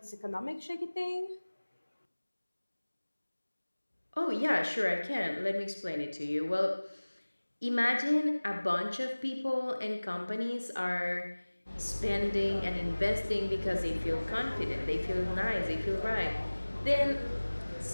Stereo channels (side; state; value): both; inverted; correlation -1.00